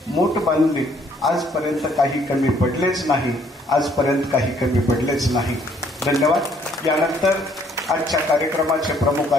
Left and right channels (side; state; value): both; normal; correlation 0.64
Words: मोठ बांधली. आजपर्यंत काही कमी पडलेच नाही, आजपर्यंत काही कमी पडलेच नाही. धन्यवाद. यानंतर आजच्या कार्यक्रमाचे प्रमुख